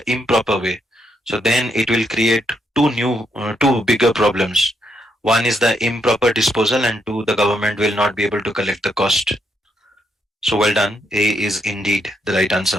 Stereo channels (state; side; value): normal; both; correlation 0.77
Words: improper way? So then it will create two bigger problems. One is the improper disposal, and two, the government will not be able to collect the cost. So well done. A is indeed the right